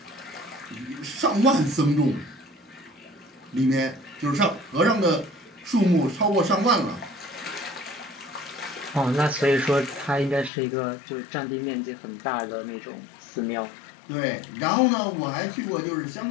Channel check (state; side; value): drops out; right; at 10.5 s